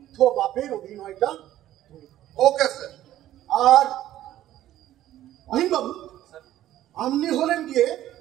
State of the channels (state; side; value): quieter; left; 13.3 dB